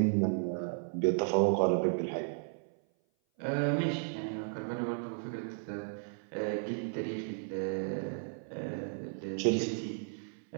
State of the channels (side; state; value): left; silent; 55 dB below the other